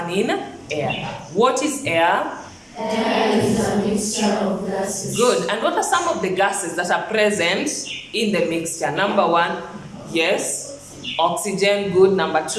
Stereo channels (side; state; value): both; identical; correlation 1.00